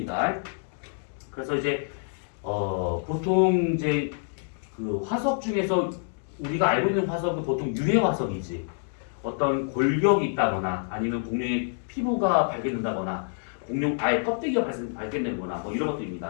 그래서 이제 보통 이제 그 화석 중에서 우리가 알고 있는 화석은 보통 유해 화석이지. 어떤 골격이 있다거나 아니면 공룡의 피부가 발견된다거나 공룡 알 껍데기가 발견되거나 이런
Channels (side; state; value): right; silent; digital silence